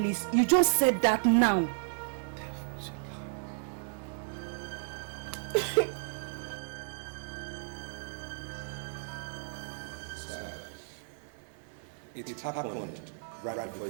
You just said that now. It happened right before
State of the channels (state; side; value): silent; left; 56 dB below the other